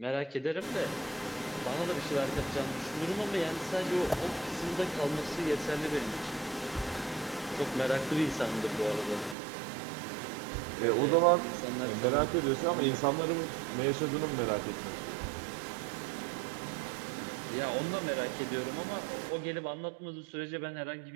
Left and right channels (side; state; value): left; drops out; at 9.3 s